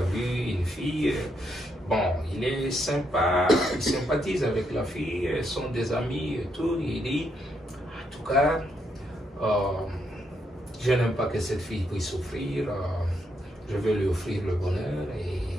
une fille, bon, il est sympa, il sympathise avec la fille, ils sont des amis et tout. Il dit, en tout cas, je n'aime pas que cette fille puisse souffrir. Je vais lui offrir le bonheur et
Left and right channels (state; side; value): normal; both; correlation 0.77